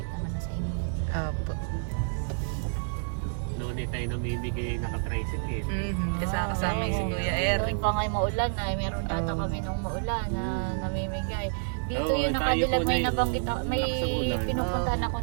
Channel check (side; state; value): left; silent; digital silence